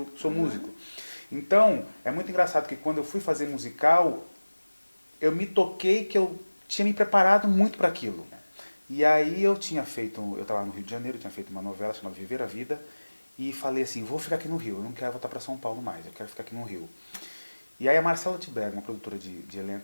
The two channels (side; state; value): both; inverted; correlation -1.00